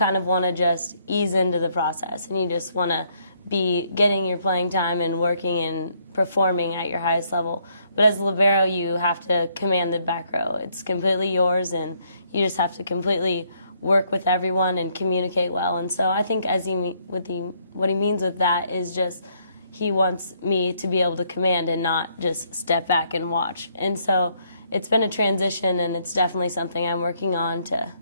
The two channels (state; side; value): inverted; both; correlation -0.70